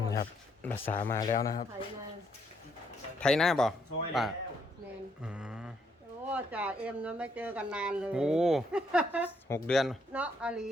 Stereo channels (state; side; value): normal; both; correlation 0.72